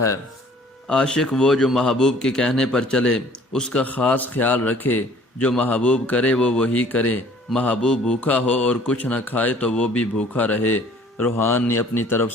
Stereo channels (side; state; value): both; normal; correlation 0.54